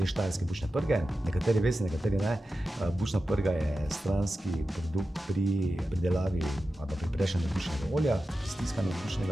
štajerske bučne prge. Nekateri veste, nekateri ne. Bučna prga je stranski produkt pri pridelavi ali pa pri prešanju bučnega olja, stiskanju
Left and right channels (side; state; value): both; normal; correlation 0.92